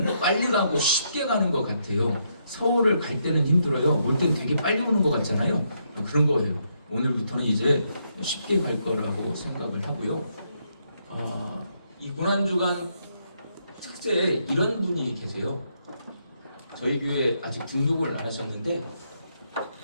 빨리 가고 쉽게 가는 것 같아요. 서울을 갈 때는 힘들어요. 올 때는 되게 빨리 오는 것 같잖아요. 그런 거예요. 오늘부터는 이제 쉽게 갈 거라고 생각을 하고요. 이 고난주간 특세에 이런 분이 계세요. 저희 교회에 아직 등록을 안 하셨는데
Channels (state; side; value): inverted; both; correlation -0.77